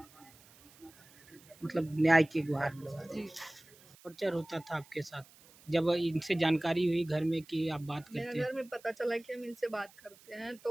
मतलब न्याय की गुहार लगा। जी। टॉर्चर होता था आपके साथ जब इनसे जानकारी हुई घर में कि आप बात करते मेरे हैं? घर में पता चला कि हम इनसे बात करते हैं,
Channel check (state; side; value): noise; right; hiss, 25 dB below the sound